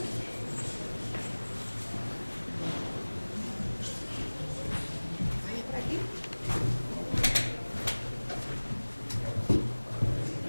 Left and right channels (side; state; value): both; inverted; correlation -1.00